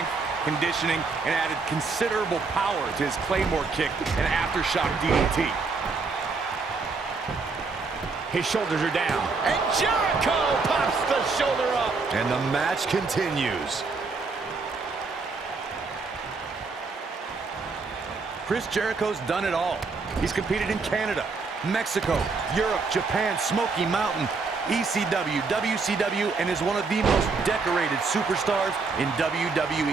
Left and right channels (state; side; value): quieter; left; 4.3 dB